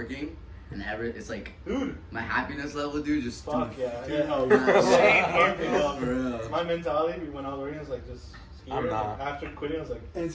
and it's like Dude, my happiness level, dude, just fuck dude, yeah. for real. My mentality when I was working was like just scared. I'm not. After quitting, I was like, And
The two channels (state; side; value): identical; both; correlation 1.00